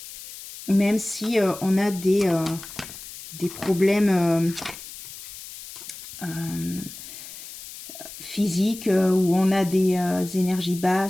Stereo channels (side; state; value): left; noise; hiss, 14 dB below the sound